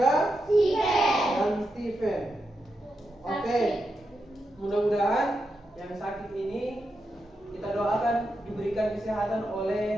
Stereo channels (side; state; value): both; normal; correlation 0.86